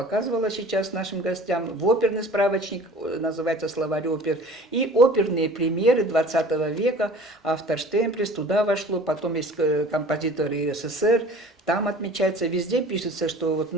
сейчас нашим гостям в оперный справочник, называется «Словарь опер», и оперные премьеры 20 века, автор Штемплес, туда вошло, потом есть композиторы СССР, там отмечается, везде пишется, что вот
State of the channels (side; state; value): both; normal; correlation 0.45